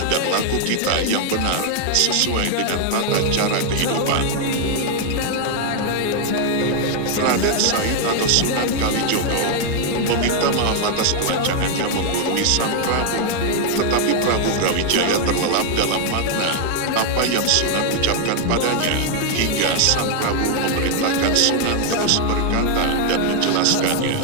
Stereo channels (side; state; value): both; different; correlation 0.00